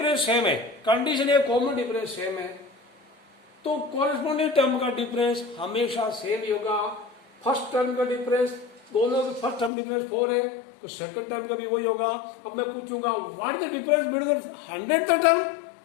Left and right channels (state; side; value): drops out; right; at 9.7 s